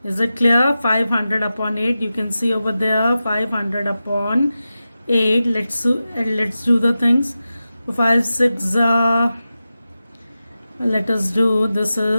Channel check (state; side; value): inverted; both; correlation -0.93